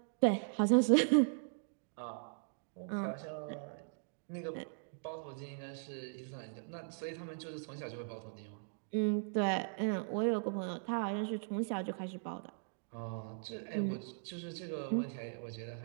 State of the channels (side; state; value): left; silent; digital silence